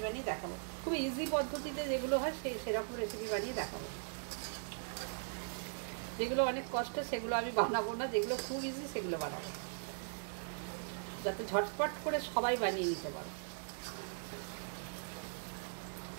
বানিয়ে দেখাবো। খুব ইজি পদ্ধতিতে যেগুলো হয় সেরকম রেসিপি বানিয়ে দেখাবো। যেগুলো অনেক কষ্ট সেগুলো আমি বানাবো না, যেগুলো খুব ইজি সেগুলো বানাবো, যাতে ঝটপট করে সবাই বানিয়ে নিতে পারে।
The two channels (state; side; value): silent; left; digital silence